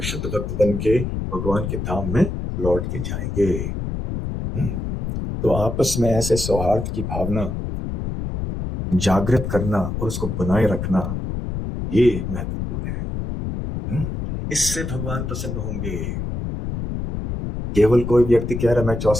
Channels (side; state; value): left; noise; rumble, 4 dB below the sound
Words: शुद्ध भक्त बन के भगवान के धाम में लौट के जाएंगे। तो आपस में ऐसे सौहार्द की भावना जागृत करना और उसको बनाए रखना, ये महत्वपूर्ण है। इससे भगवान प्रसन्न होंगे। केवल कोई व्यक्ति कह रहा है मैं